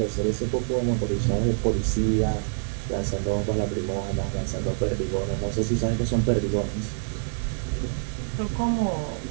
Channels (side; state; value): left; silent; digital silence